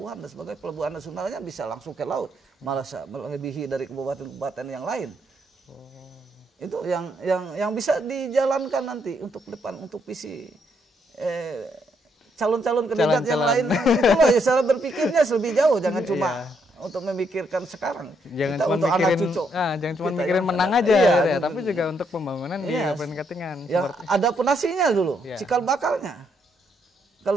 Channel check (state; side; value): normal; both; correlation 0.75